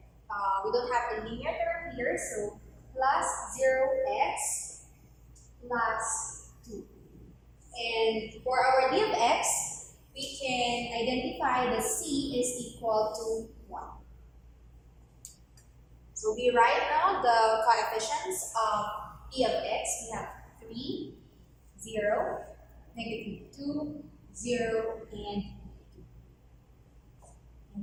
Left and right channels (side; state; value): both; identical; correlation 1.00